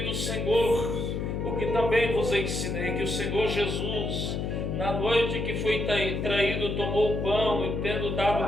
Senhor o que também vos ensinei, que o Senhor Jesus, na noite que foi traído, tomou o pão e, tendo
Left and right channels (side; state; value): left; noise; hum, 2 dB below the sound